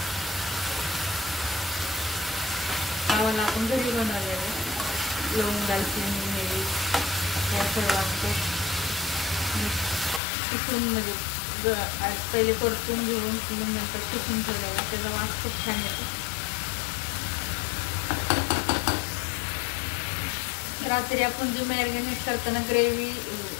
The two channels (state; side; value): drops out; right; at 10.2 s